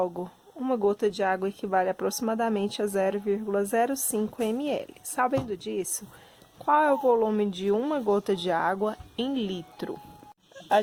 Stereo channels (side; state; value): both; identical; correlation 1.00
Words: uma gota de água equivale aproximadamente a 0,05 ml. Sabendo disso, qual é o volume de uma gota de água em litro? A